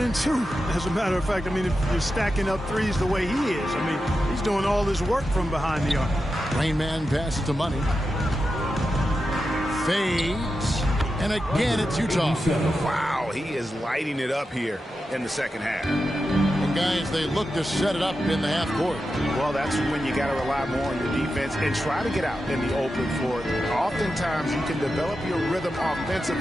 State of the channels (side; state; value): both; normal; correlation 0.90